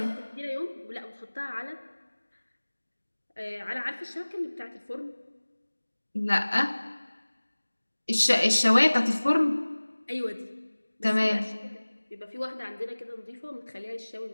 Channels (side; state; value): both; inverted; correlation -1.00